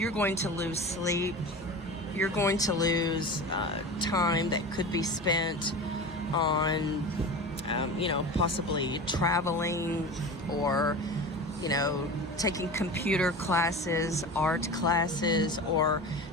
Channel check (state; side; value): normal; both; correlation 0.31